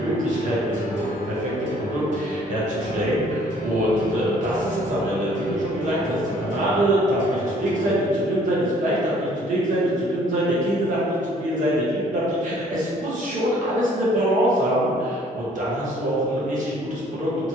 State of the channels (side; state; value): both; normal; correlation 0.58